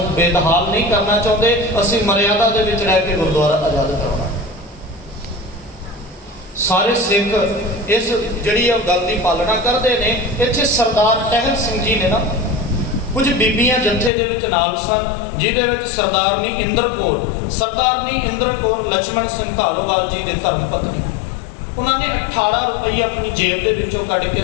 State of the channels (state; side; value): drops out; right; at 14.1 s